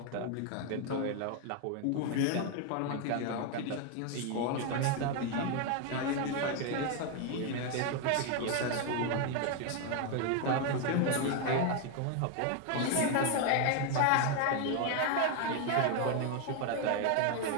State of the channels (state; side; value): different; both; correlation 0.01